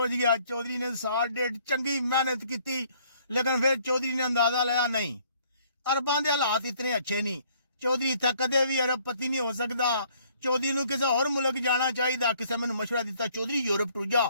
ਗਿਆ। ਚੌਧਰੀ ਨੇ ਸਾਲ ਡੇਢ ਚੰਗੀ ਮਿਹਨਤ ਕੀਤੀ, ਲੇਕਿਨ ਫਿਰ ਚੌਧਰੀ ਨੇ ਅੰਦਾਜ਼ਾ ਲਾਇਆ ਨਹੀਂ, ਅਰਬਾਂ ਦੇ ਹਾਲਾਤ ਇਤਨੇ ਅੱਛੇ ਨਹੀਂ। ਚੌਧਰੀ ਇੱਥੇ ਕਦੇ ਵੀ ਅਰਬਪਤੀ ਨਹੀਂ ਹੋ ਸਕਦਾ। ਚੌਧਰੀ ਨੂੰ ਕਿਸੇ ਹੋਰ ਮੁਲਕ ਜਾਣਾ ਚਾਹੀਦਾ। ਕਿਸੇ ਮੈਨੂੰ ਮਸ਼ਵਰਾ ਦਿੱਤਾ ਚੌਧਰੀ ਯੂਰਪ ਟੁਰ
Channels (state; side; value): inverted; both; correlation -0.62